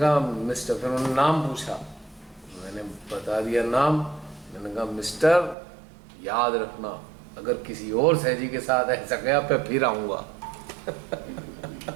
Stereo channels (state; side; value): drops out; left; at 5.6 s